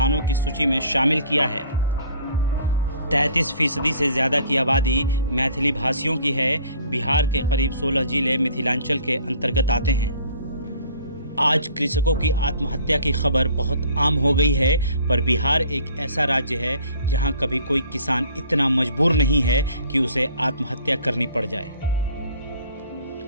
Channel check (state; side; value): inverted; both; correlation -0.54